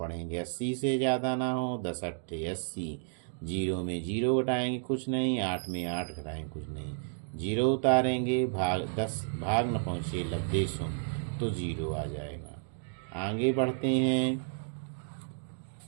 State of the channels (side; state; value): left; silent; digital silence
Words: 80 से ज़्यादा ना हो, 10 अट्ठे 80, 0 में 0 घटाएंगे कुछ नहीं, 8 में 8 घटाएंगे कुछ नहीं, 0 उतारेंगे, भाग 10 भाग न पहुँचे लब्धे शून्य, तो 0 आ जाएगा। आगे बढ़ते हैं।